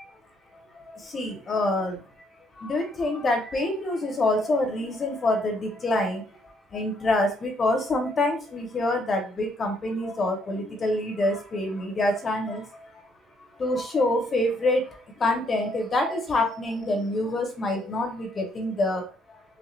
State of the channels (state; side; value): normal; both; correlation 0.70